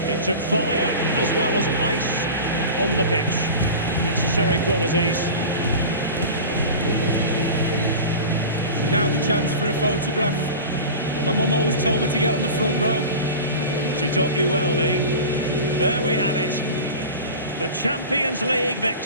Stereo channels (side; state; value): both; inverted; correlation -0.32